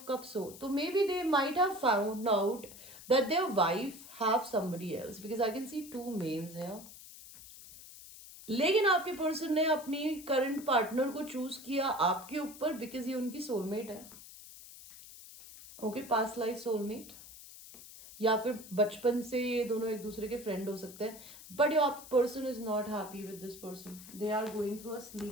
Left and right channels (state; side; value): noise; left; hiss, 16 dB below the sound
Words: कप्स हो, तो maybe they might have found out that their wife have somebody else, because I can see 2 males here. लेकिन आपके पर्सन ने अपनी करंट पार्टनर को चूज किया आपके ऊपर बिकॉज ये उनकी सोलमेट है, ओके, पास्ट लाइफ सोलमेट, या फिर बचपन से ये दोनों एक दूसरे के फ्रेंड हो सकते हैं। But your person is not happy with this person, they are going through a